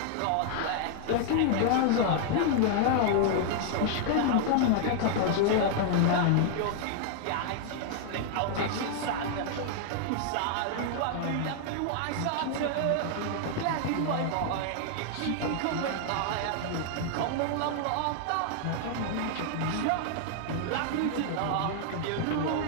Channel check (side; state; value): both; different; correlation 0.00